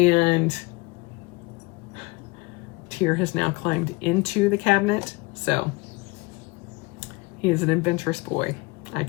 Tyr has now climbed into the cabinet, so he is an adventurous boy, I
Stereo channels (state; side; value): quieter; right; 25.1 dB